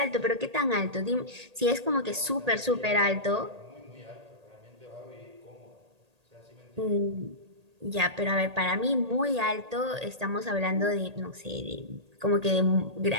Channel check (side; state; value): left; late; 1.8 ms